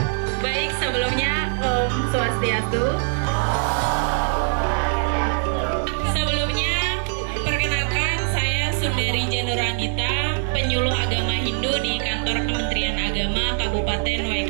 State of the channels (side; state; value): left; silent; 64 dB below the other